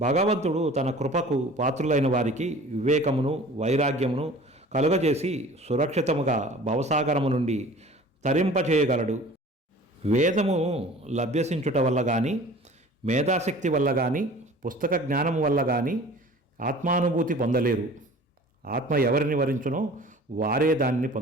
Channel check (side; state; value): both; normal; correlation 0.45